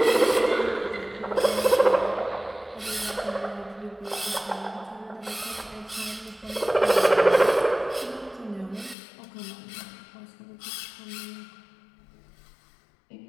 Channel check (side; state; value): right; drops out; at 9.0 s